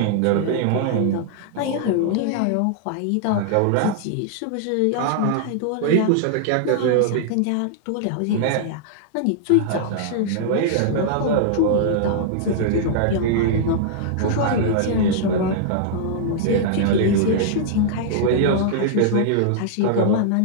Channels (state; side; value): different; both; correlation -0.01